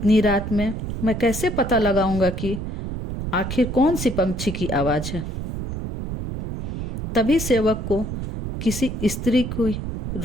रात में मैं कैसे पता लगाऊंगा कि आखिर कौन सी पंछी की आवाज़ है। तभी सेवक को किसी स्त्री को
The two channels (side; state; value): right; noise; rumble, 5 dB below the sound